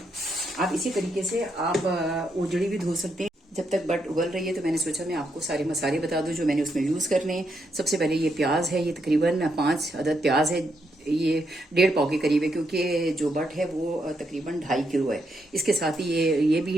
आप इसी तरीके से आप ओजड़ी भी धो सकते हैं। जब तक बट उबल रही है तो मैंने सोचा मैं आपको सारे मसाले बता दूं जो मैंने उसमें यूज करने हैं। सबसे पहले ये प्याज है, ये तकरीबन 5 अदद प्याज है। ये 1.5 पाव के करीब है, क्योंकि जो बट है वो तकरीबन 2.5 किलो है। इसके साथ ही ये भी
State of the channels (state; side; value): normal; both; correlation 0.79